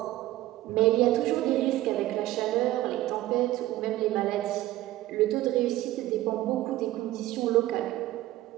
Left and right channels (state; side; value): quieter; left; 15.8 dB